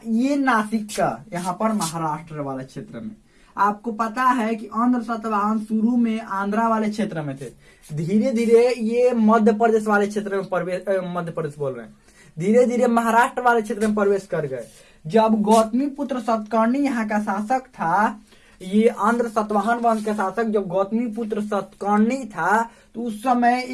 ये नासिक का, यहाँ पर महाराष्ट्र वाले क्षेत्र में। आपको पता है कि आंध्र सातवाहन शुरू में आंध्रा वाले क्षेत्र में थे, धीरे धीरे ये मध्य प्रदेश वाले क्षेत्र में प्रवेश, मध्य प्रदेश बोल रहे हैं, धीरे धीरे महाराष्ट्र वाले क्षेत्र में प्रवेश कर गए। जब गौतमीपुत्र सतकर्णी यहाँ का शासक था, ये आंध्र सातवाहन वंश का शासक जब गौतमीपुत्र सतकर्णी था, तो उस समय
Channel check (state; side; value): identical; both; correlation 1.00